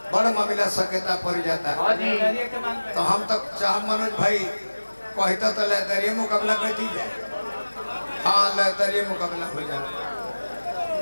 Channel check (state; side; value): inverted; both; correlation -1.00